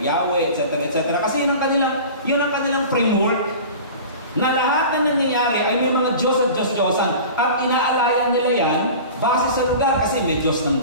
etc., etc. Kasi yun ang kanilang framework na lahat na nangyayari ay may mga Diyos at Diyos-Diyosan. At inaalayan nila yan base sa lugar kasi may Diyos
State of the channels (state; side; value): inverted; both; correlation -0.37